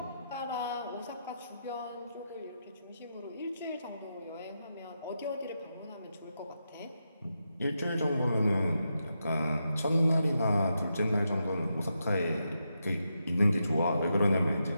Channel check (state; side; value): inverted; both; correlation -0.85